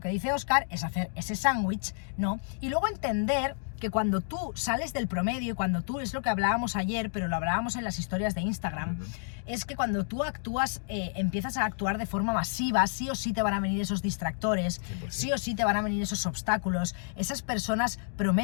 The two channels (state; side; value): silent; right; digital silence